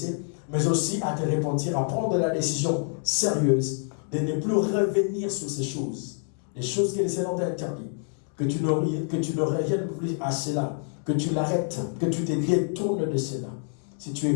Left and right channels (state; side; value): silent; right; 58 dB below the other